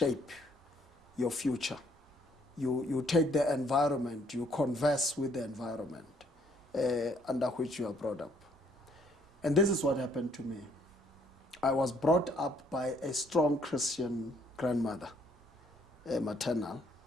your future. You take the environment, you converse with the environment under which you are brought up. And this is what happened to me. I was brought up by a strong Christian grandmother, maternal,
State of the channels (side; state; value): both; normal; correlation 0.66